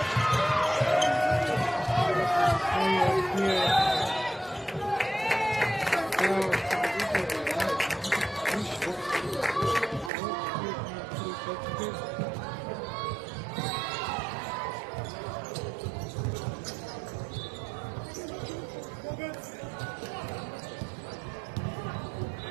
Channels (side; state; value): left; drops out; at 10.1 s